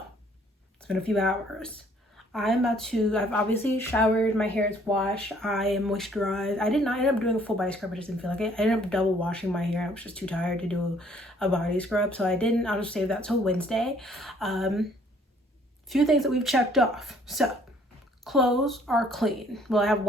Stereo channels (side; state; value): both; normal; correlation 0.61